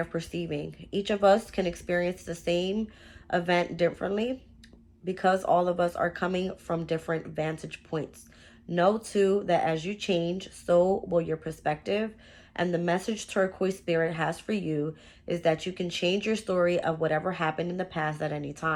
perceiving. Each of us can experience the same event differently because all of us are coming from different vantage points. Know too that as you change, so will your perspective. And the message Turquoise Spirit has for you is that you can change your story of whatever happened in the past at any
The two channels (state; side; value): identical; both; correlation 1.00